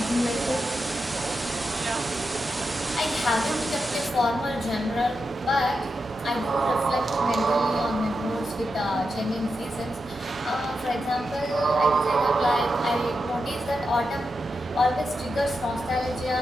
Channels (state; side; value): normal; both; correlation 0.87